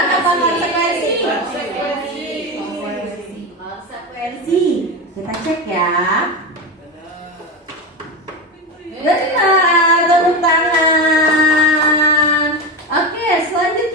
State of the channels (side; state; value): both; normal; correlation 0.18